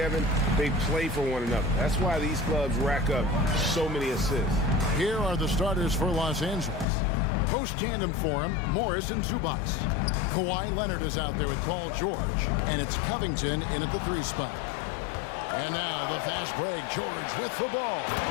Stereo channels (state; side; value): drops out; right; at 6.9 s